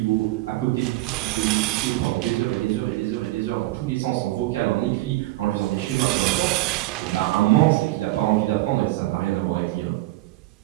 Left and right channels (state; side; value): quieter; left; 18.4 dB